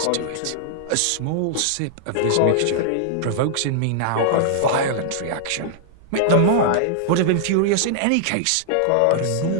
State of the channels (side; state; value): both; different; correlation -0.01